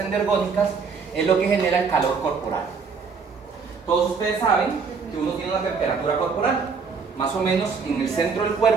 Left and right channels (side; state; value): left; quieter; 5.3 dB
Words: es lo que genera el calor corporal. Todos ustedes saben que uno tiene una temperatura corporal. Más o menos en el centro del